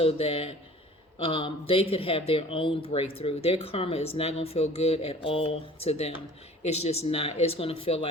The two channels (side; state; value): both; normal; correlation 0.47